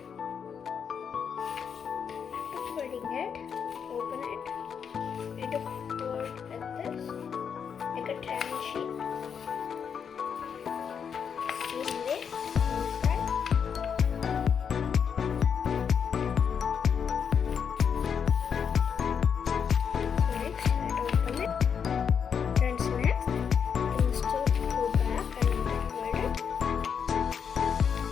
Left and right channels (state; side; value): quieter; right; 7.1 dB